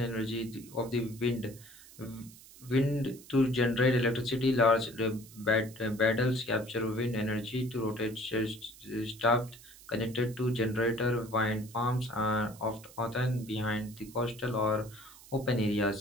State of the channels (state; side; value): noise; right; hiss, 20 dB below the sound